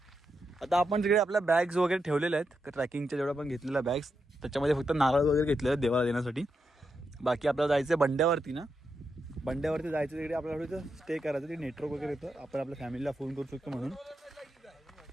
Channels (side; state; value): both; normal; correlation 0.85